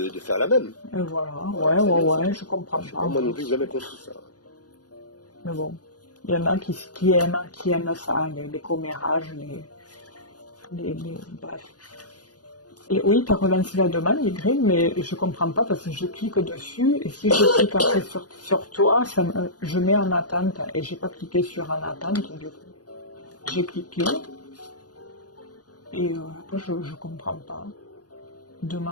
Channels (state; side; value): late; right; 0.68 ms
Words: faire la même. Et voilà, Voilà, c'est bien ça. je comprends Je sais pas. pas, moi non plus, j'ai jamais compris ça. Mais bon, il y en a qui aiment ça, les commérages, bref. Et oui, tu as relancé la demande, Y, mais je comprends pas parce que je clique dessus et si je clique après sur toi, je mets en attente et j'ai pas cliqué sur en attente du coup. J'ai cliqué et après je comprends pas.